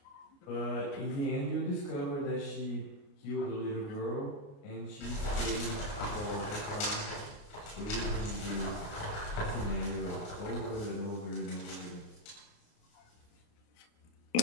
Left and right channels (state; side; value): late; right; 29 ms